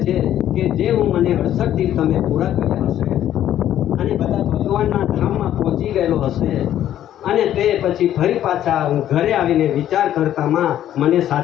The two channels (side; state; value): right; quieter; 11.6 dB